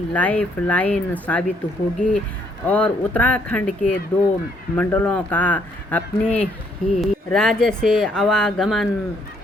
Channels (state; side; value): normal; both; correlation 0.68